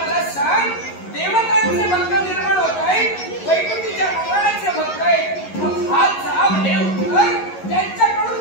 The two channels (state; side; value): late; right; 11 ms